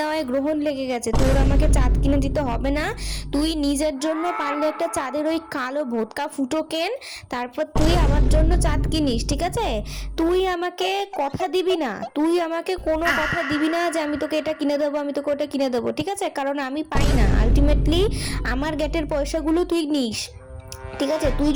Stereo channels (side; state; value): both; identical; correlation 1.00